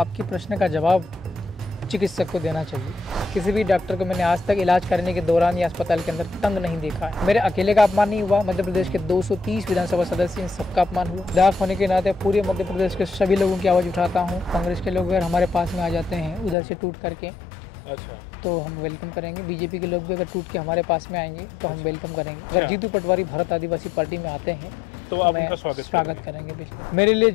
प्रश्न का जवाब चिकित्सक को देना चाहिए। किसी भी डॉक्टर को मैंने आज तक इलाज करने के दौरान या अस्पताल के अंदर तंग नहीं देखा है। मेरे अकेले का अपमान नहीं हुआ, मध्य प्रदेश के 230 विधानसभा सदस्य, इन सबका अपमान हुआ। विधायक होने के नाते पूरे मध्य प्रदेश के सभी लोगों की आवाज़ उठाता हूँ। कांग्रेस के लोग अगर हमारे पास में आ जाते हैं उधर से टूट करके, अच्छा, तो हम वेलकम करेंगे। बीजेपी के लोग भी अगर टूट के हमारे पास में आएंगे तो हम वेलकम करेंगे। अगर जीतू पटवारी भारत आदिवासी पार्टी में आते हैं तो आप उनका स्वागत करेंगे। मेरे लिए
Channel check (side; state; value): right; drops out; at 16.6 s